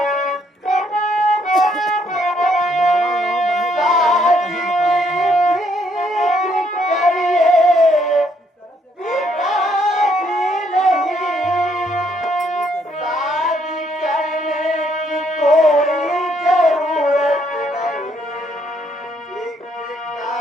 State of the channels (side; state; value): both; normal; correlation 0.70